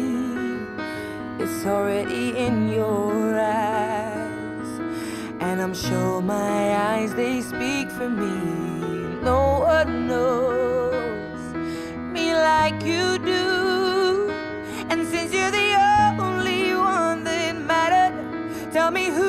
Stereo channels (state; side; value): identical; both; correlation 1.00